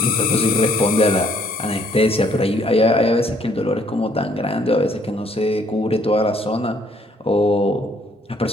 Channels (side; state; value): both; normal; correlation 0.64